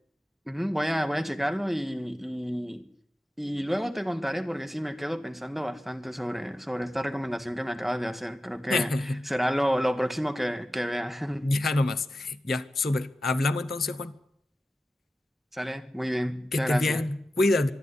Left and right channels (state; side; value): normal; both; correlation 0.92